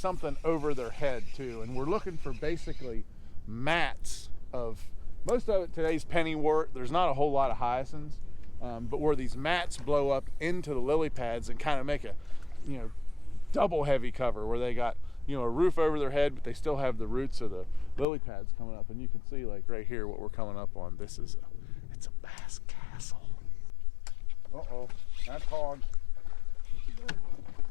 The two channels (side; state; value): right; drops out; at 18.1 s